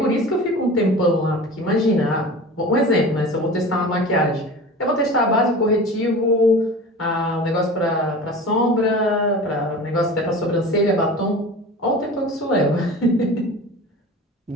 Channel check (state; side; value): normal; both; correlation 0.36